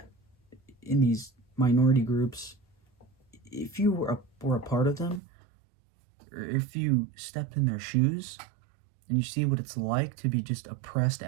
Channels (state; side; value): drops out; left; at 5.2 s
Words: minority groups, if you were a part of them, or if you stepped in their shoes, and you see what it's like to be just oppressed